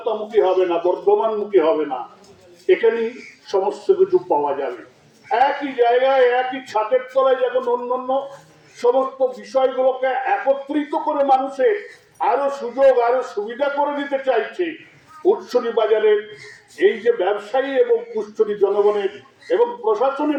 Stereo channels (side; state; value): both; identical; correlation 1.00